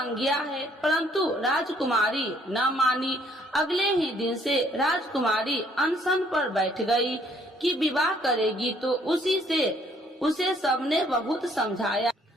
है, परंतु राजकुमारी न मानी। अगले ही दिन से राजकुमारी अनशन पर बैठ गई कि विवाह करेगी तो उसे सबने बहुत समझाया,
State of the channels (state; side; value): normal; both; correlation 0.64